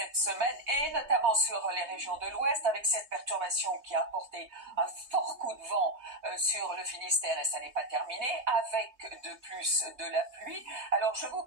semaine et notamment sur les régions de l'Ouest avec cette perturbation qui a apporté un fort coup de vent sur le Finistère et ça n'est pas terminé avec de plus de la pluie. Alors je vais vous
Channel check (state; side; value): late; left; 3.2 ms